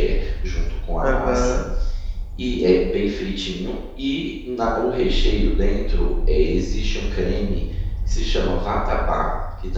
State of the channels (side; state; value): both; identical; correlation 1.00